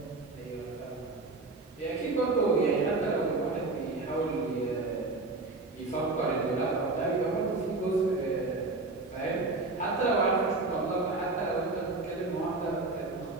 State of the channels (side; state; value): left; quieter; 3.3 dB